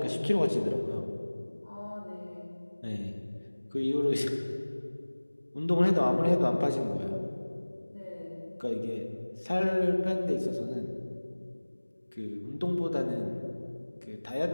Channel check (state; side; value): inverted; both; correlation -1.00